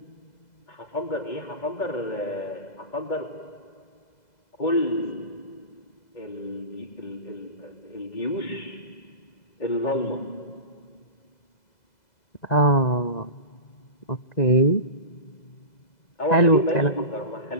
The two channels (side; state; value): right; late; 2.0 ms